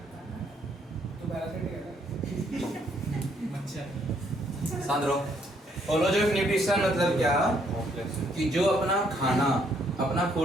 सांद्रो, होलोजोइक न्यूट्रिशन मतलब क्या कि जो अपना खाना अपना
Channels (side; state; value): both; normal; correlation 0.69